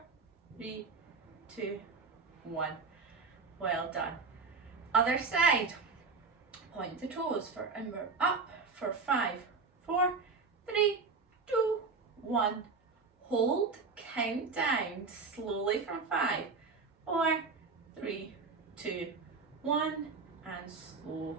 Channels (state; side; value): quieter; left; 4.4 dB